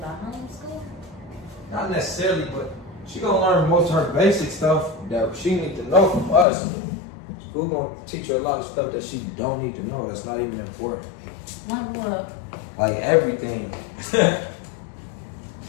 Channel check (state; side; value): drops out; right; at 6.5 s